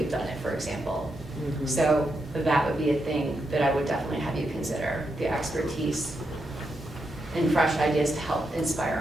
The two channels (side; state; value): both; normal; correlation 0.83